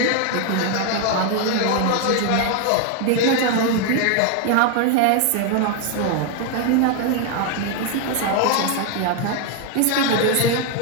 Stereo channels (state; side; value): different; both; correlation 0.00